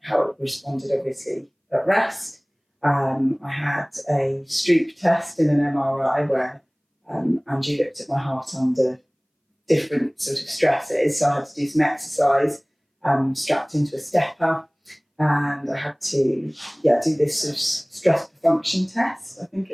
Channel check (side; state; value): both; identical; correlation 1.00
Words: it responded, obviously, at rest. I had a Stroop test in an MRI where Andrew looked at my heart under different sort of stresses. So I had to do some exercise strapped into a stepper. And I had to do this sort of stress function test, I think